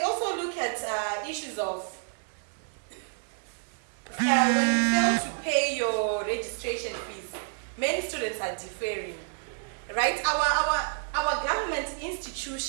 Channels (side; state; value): left; silent; digital silence